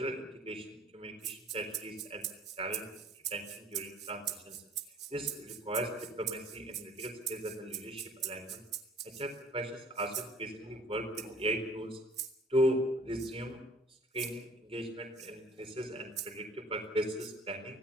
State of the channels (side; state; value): both; normal; correlation 0.52